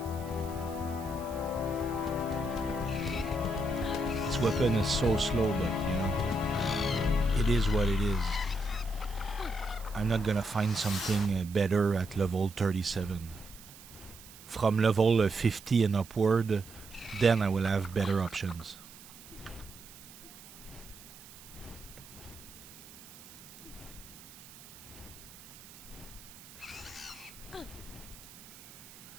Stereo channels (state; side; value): noise; right; hiss, 18 dB below the sound